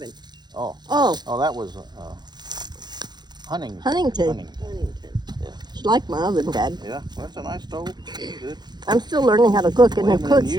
Oh. Oh, Oh, that was Huntington. Huntington. She liked my oven, Dad. Yeah, well, that's a nice stove. Good. I'm still learning how to cook, and it cooks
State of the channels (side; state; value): left; late; 0.21 ms